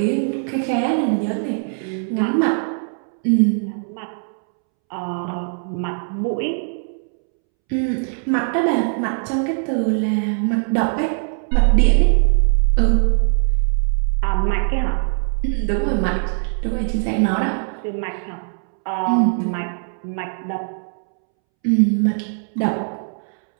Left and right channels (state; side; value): silent; left; 65 dB below the other